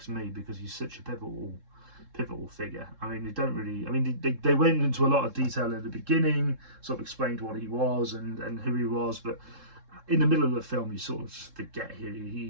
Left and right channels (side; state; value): left; late; 3.7 ms